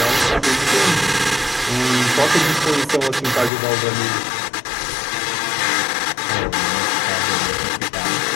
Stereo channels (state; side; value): drops out; right; at 3.5 s